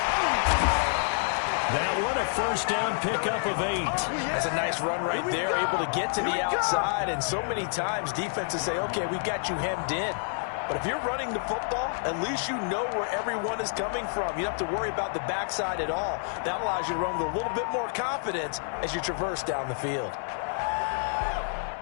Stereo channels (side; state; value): right; silent; 57 dB below the other